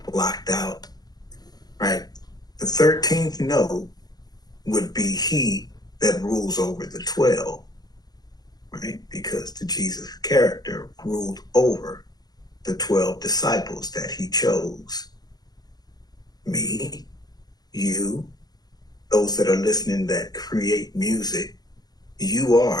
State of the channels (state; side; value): late; right; 0.19 ms